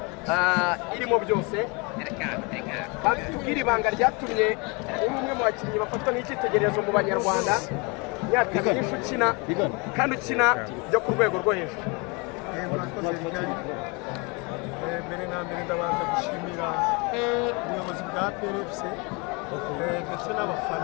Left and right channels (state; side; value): quieter; right; 29.7 dB